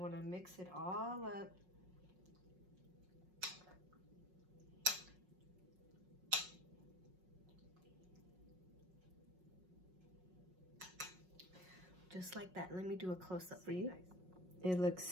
to mix it all up. Just like that. Let me do a close-up for you. It looks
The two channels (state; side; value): late; left; 5.5 ms